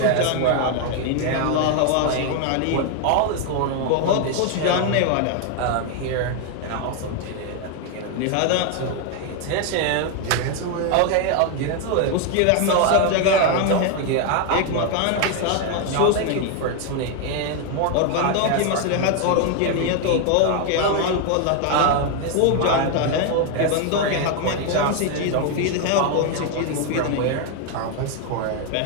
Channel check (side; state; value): both; different; correlation 0.01